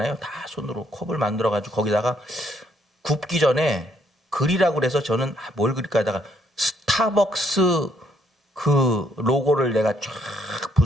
다 손으로 컵을 만들어가지고 거기다가 굽기 전에 그리라고 그래서 저는 뭘 그릴까 하다가 스타벅스 그 로고를 내가 쫙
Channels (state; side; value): normal; both; correlation 0.70